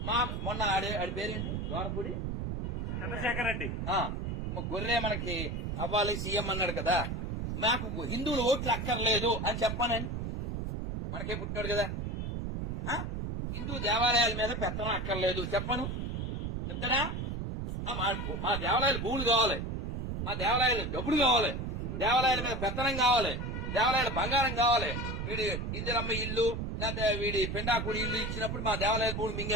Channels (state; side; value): noise; right; rumble, 3 dB below the sound